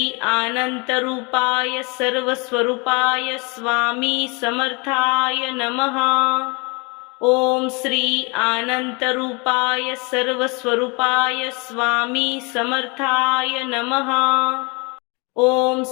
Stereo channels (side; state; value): right; quieter; 30.1 dB